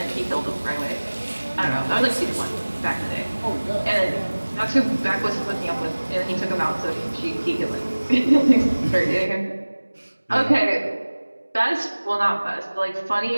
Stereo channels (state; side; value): inverted; both; correlation -1.00